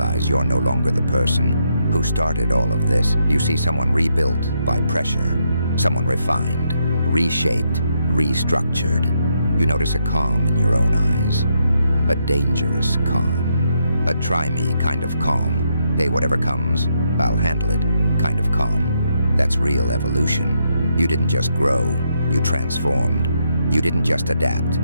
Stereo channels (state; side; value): inverted; both; correlation -0.78